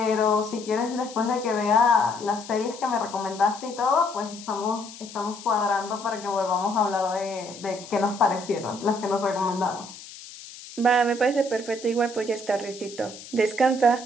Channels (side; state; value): left; noise; hiss, 16 dB below the sound